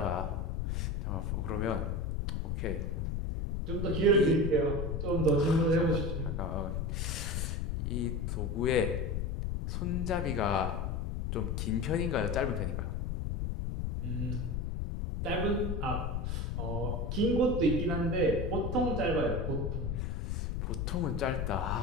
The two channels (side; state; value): left; noise; rumble, 1 dB below the sound